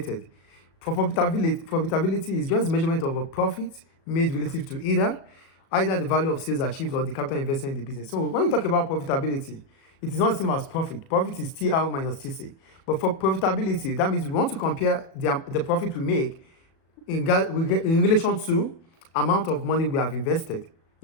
For profitability is just measurement of a profit made relative to either the value of sales achieved or the capital invested in the business. So when we talk about profitability, it is not the same as profit. Profit is TR minus TC. But for profitability, that means we want to compare the profit we make in relation to amount of money we have invested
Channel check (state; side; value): late; right; 37 ms